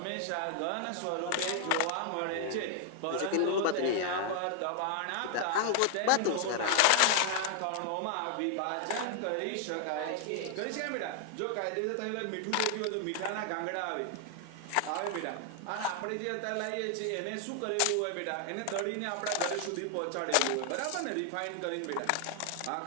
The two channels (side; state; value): both; different; correlation 0.00